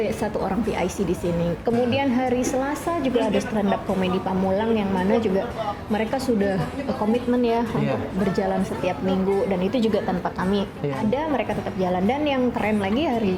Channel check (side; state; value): both; identical; correlation 1.00